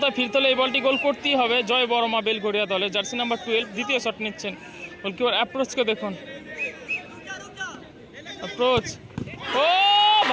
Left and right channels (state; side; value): identical; both; correlation 1.00